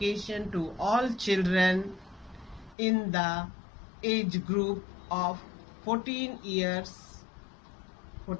to all children in the age group of 14 years,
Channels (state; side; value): drops out; right; at 2.8 s